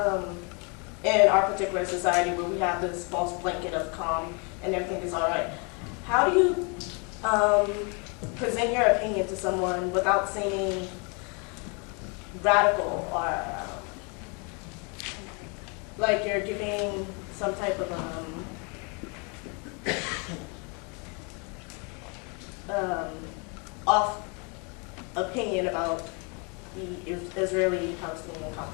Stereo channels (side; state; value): right; quieter; 33.7 dB